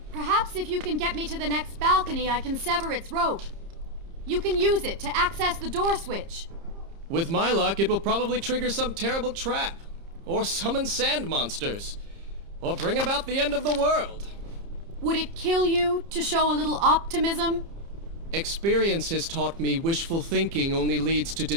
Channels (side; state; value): left; late; 30 ms